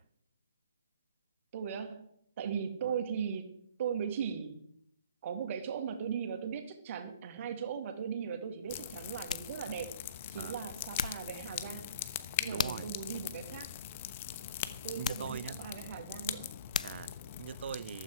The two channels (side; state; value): both; inverted; correlation -0.48